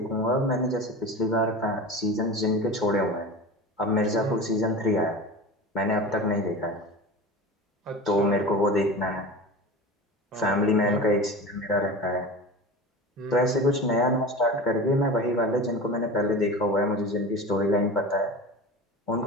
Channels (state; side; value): normal; both; correlation 0.32